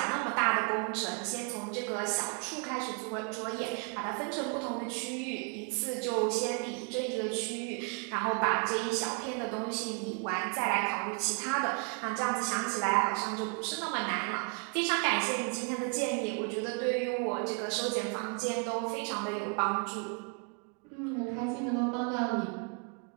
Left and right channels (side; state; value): left; quieter; 37.4 dB